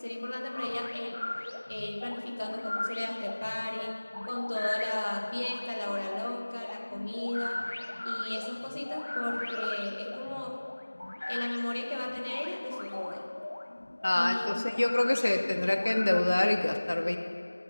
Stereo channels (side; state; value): both; inverted; correlation -1.00